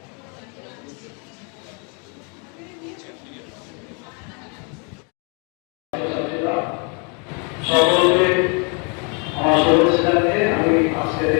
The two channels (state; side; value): quieter; right; 35.8 dB